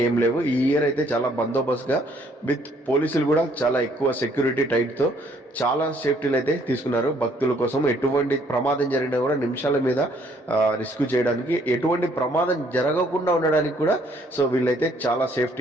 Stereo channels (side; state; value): both; normal; correlation 0.64